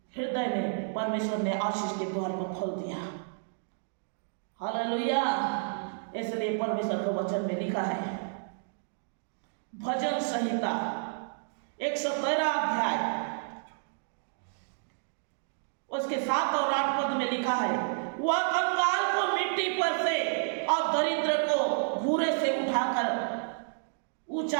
हृदय में परमेश्वर ने आशीष के द्वार को खोल दिया। हालेलुया। इसलिए परमेश्वर के वचन में लिखा है, भजन संहिता 113 अध्याय उसके 7 और 8 पद में लिखा है, वह कंगाल को मिट्टी पर से और दरिद्र को भूरे से उठाकर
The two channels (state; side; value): silent; left; digital silence